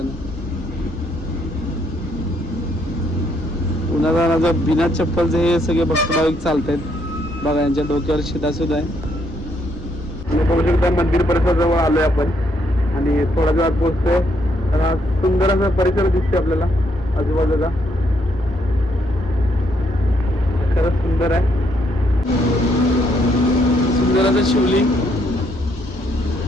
उन्हाळ्यात बिना चप्पलचे हे सगळे भक्त भाविक चालत आहेत. बघा यांच्या डोक्यावर शिदा सुद्धा आहे. बघू शकता मंदिर परिसराजवळ आलोय आपण आणि थोड्या वेळात पोहोचतोय. तर हा सुंदर असा परिसर दिसतोय आपल्याला आजूबाजूला. खरंच सुंदर आहे. सुंदर असं शिवलिंग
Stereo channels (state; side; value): normal; both; correlation 0.73